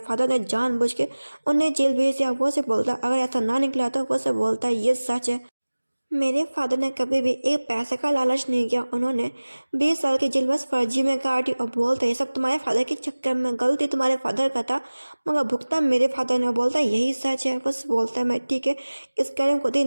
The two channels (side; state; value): both; inverted; correlation -1.00